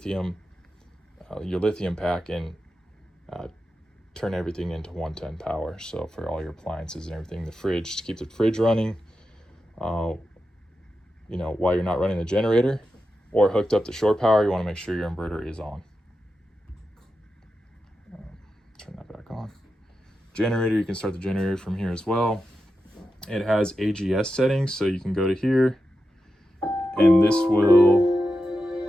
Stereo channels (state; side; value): normal; both; correlation 0.90